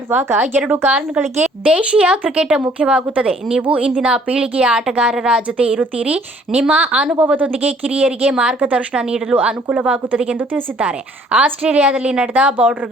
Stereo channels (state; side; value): normal; both; correlation 0.59